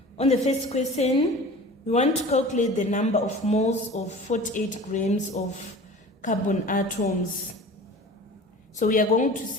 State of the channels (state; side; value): normal; both; correlation 0.40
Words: On the first question, we want to calculate the number of moles of 48 grams of carbon atoms. So we are going to